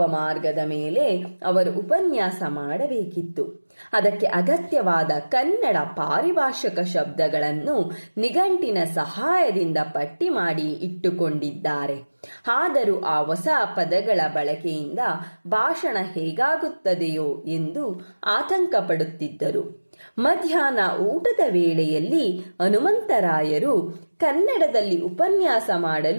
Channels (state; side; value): inverted; both; correlation -1.00